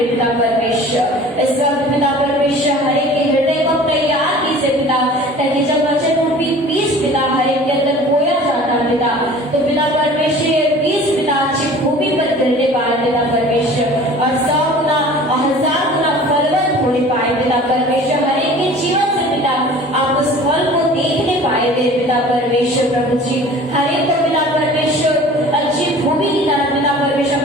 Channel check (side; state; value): both; normal; correlation 0.44